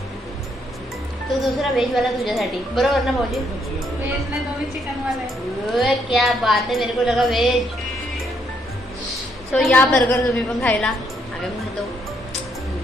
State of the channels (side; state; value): both; normal; correlation 0.73